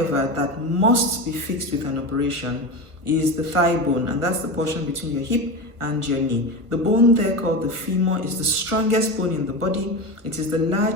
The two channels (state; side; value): late; left; 1.4 ms